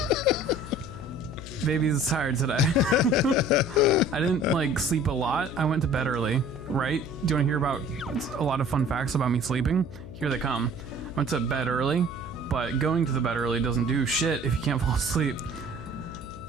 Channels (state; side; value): noise; left; hum, 14 dB below the sound